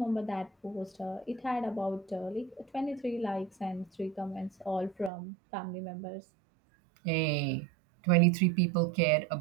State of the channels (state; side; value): drops out; left; at 5.1 s